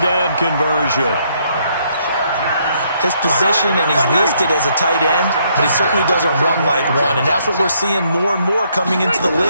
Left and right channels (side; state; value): both; inverted; correlation -0.71